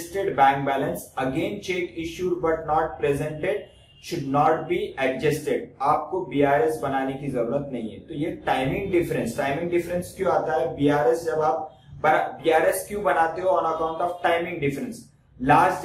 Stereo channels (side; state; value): both; identical; correlation 1.00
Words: bank balance. Again check issued but not presented should not be adjusted. आपको BRS बनाने की जरूरत नहीं है। तो ये टाइमिंग डिफरेंस क्यों आता है? BRS जब आप BRS क्यों बनाते हो? On account of timing difference. Last